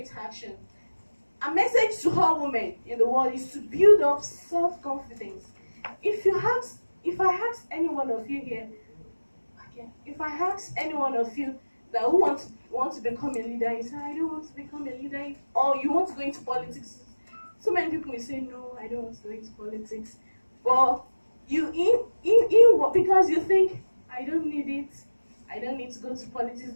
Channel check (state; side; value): inverted; both; correlation -1.00